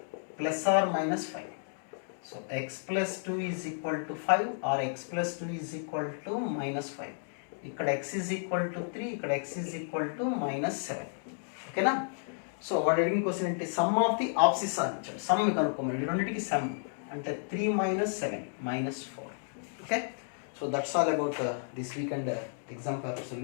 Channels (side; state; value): right; silent; digital silence